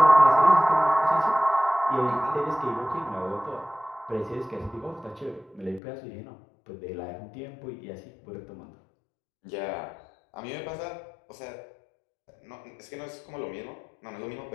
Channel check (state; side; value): drops out; right; at 5.8 s